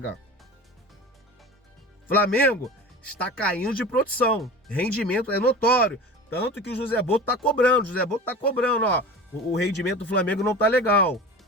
Flamengo está caindo de produção, rendimento é notório, tanto que o José Boto tá cobrando, ó, o rendimento do Flamengo não tá legal,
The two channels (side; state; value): both; normal; correlation 0.34